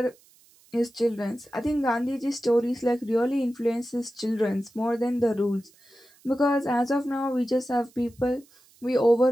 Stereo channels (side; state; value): right; noise; hiss, 29 dB below the sound